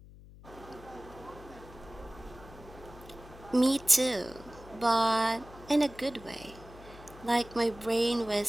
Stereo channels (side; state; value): left; noise; hum, 19 dB below the sound